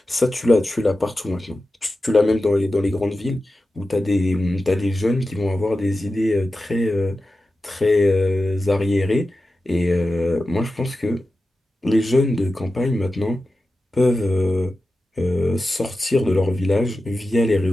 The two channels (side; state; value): both; normal; correlation 0.93